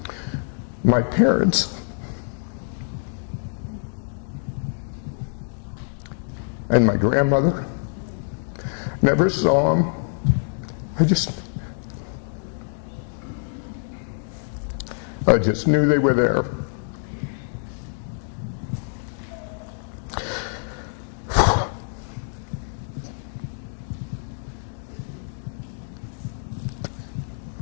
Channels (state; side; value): silent; right; digital silence